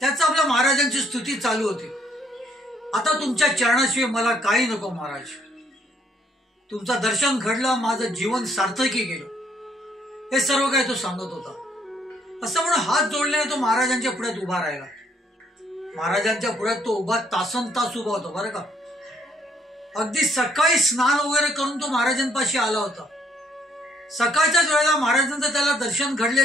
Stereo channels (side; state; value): both; normal; correlation 0.68